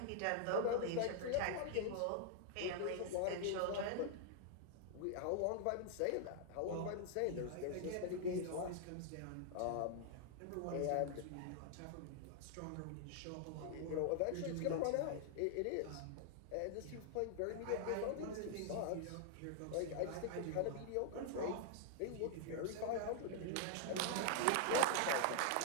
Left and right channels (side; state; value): both; different; correlation 0.00